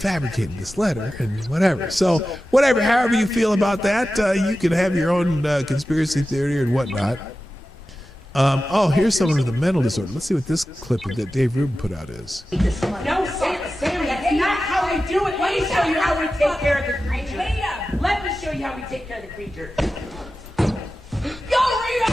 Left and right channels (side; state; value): both; normal; correlation 0.94